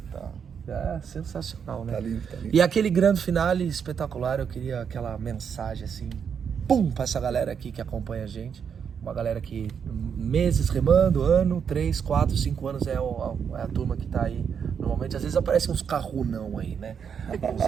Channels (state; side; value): quieter; left; 7.2 dB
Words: É sensacional, né? Tá lindo, tá lindo. E aquele grande finale espetacular, eu queria aquela mensagem assim, pra essa galera aqui que acompanha a gente. Uma galera que meses remando, 3, 4, 5 anos é a turma que tá aí. Normalmente, às vezes aparecem uns carrunão aí, né? Uns